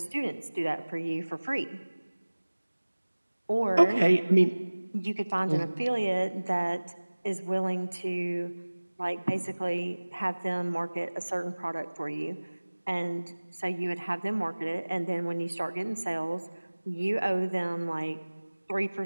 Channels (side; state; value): both; inverted; correlation -1.00